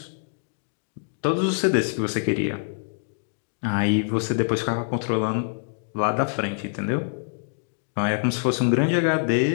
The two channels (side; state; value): right; silent; digital silence